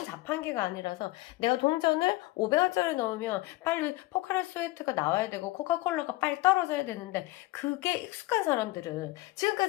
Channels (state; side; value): quieter; right; 20.1 dB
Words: 자판기가 아니라서 내가 동전을 500원짜리 넣으면 빨리 포카리 스웨트가 나와야 되고 코카콜라가 빨리 떨어져야 되는데, 그게 익숙한 사람들은